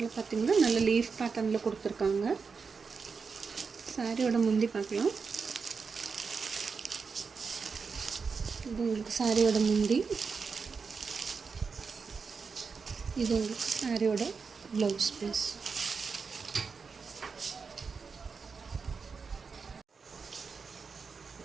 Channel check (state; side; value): quieter; left; 5.2 dB